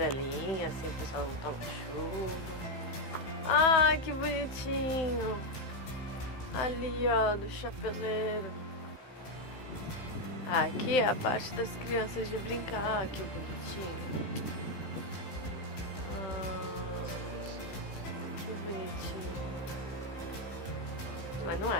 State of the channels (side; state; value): right; late; 15 ms